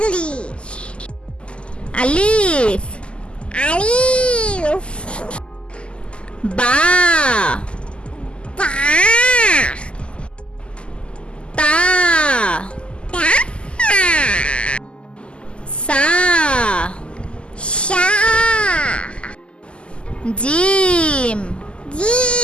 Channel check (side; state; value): right; late; 0.052 ms